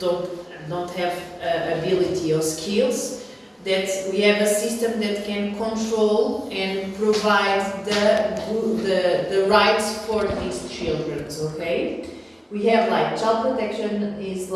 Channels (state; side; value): identical; both; correlation 1.00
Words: have ability or skills, that we have a system that can control and provide the rights for these children, okay? We have like child protection is